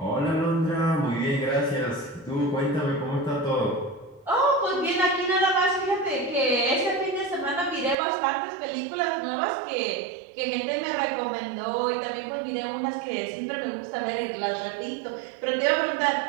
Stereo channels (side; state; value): left; drops out; at 8.0 s